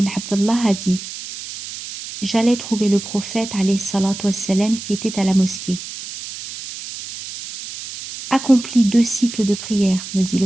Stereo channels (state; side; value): noise; right; hiss, 10 dB below the sound